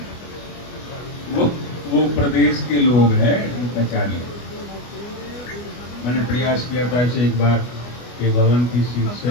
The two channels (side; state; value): right; late; 25 ms